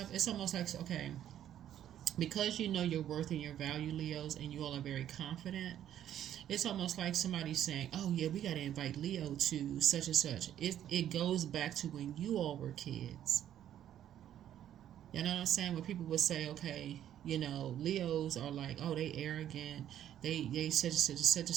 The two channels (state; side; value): quieter; left; 10.9 dB